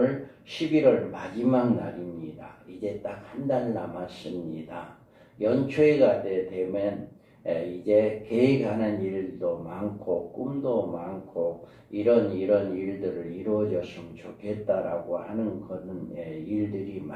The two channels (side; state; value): both; identical; correlation 1.00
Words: 11월 마지막 날입니다. 이제 딱 한 달 남았습니다. 연초가 되면 이제 계획하는 일도 많고 꿈도 많고 이런 일들을 이루어졌으면 좋겠다라고 하는 그런 일들이